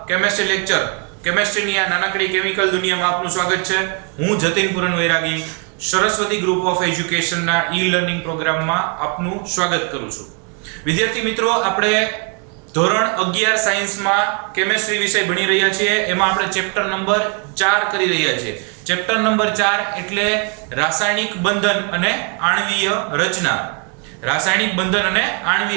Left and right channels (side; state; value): left; quieter; 36.1 dB